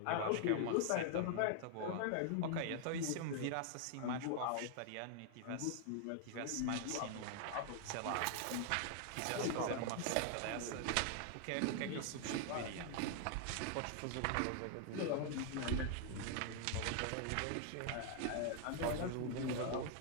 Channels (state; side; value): different; both; correlation 0.00